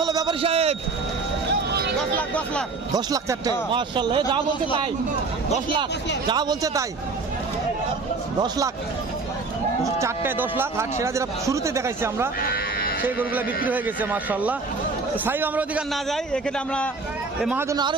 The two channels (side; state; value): left; quieter; 4.0 dB